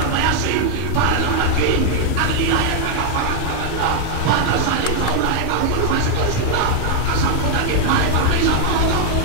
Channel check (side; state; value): both; different; correlation 0.00